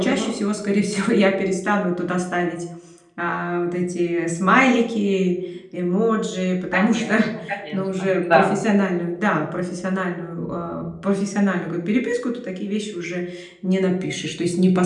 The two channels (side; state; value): both; identical; correlation 1.00